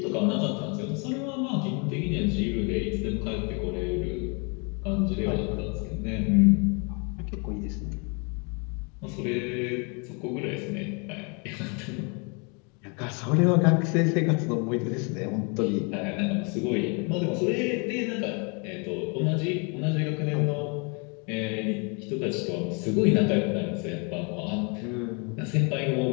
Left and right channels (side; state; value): right; quieter; 33.9 dB